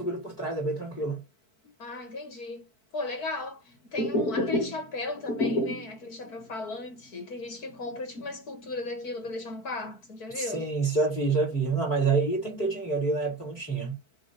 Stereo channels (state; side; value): late; right; 4.6 ms